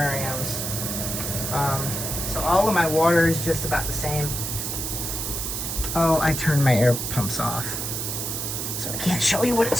So all of my water is just about the same. Oh, I turned my air pumps off, so I can't show you what it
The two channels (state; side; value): noise; right; hiss, 3 dB below the sound